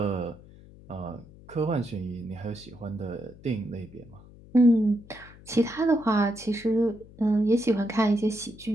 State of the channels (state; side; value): noise; left; hum, 21 dB below the sound